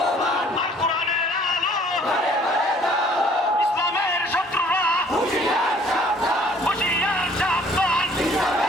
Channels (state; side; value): normal; both; correlation 0.57